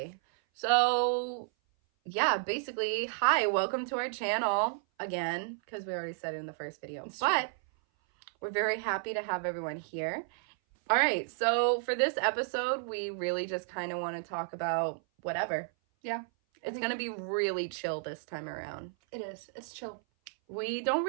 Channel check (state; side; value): silent; left; 56 dB below the other